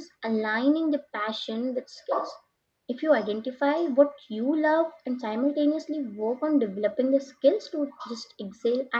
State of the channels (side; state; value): both; identical; correlation 1.00